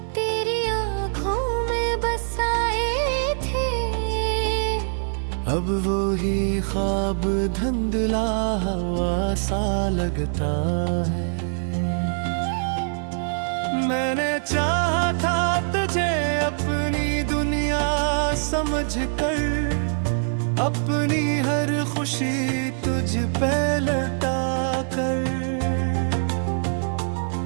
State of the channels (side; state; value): left; silent; 62 dB below the other